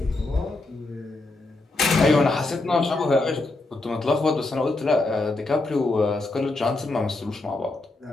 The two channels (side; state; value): right; quieter; 3.0 dB